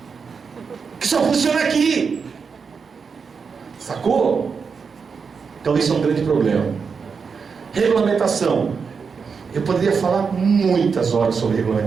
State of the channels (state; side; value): quieter; left; 5.6 dB